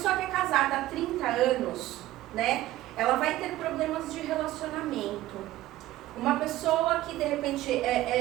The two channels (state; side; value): quieter; left; 15.7 dB